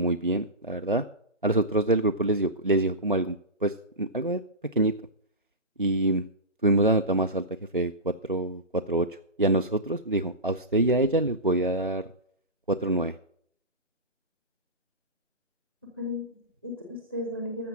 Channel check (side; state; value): both; normal; correlation -0.17